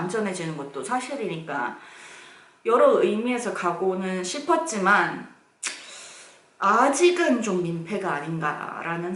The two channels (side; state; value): both; identical; correlation 1.00